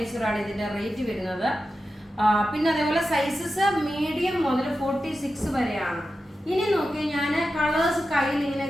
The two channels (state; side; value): normal; both; correlation 0.91